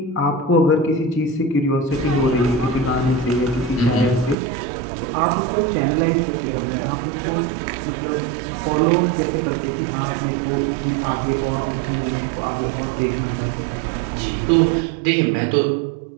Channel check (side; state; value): left; drops out; at 4.4 s